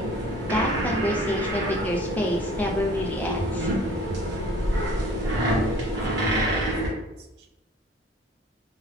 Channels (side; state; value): both; normal; correlation 0.49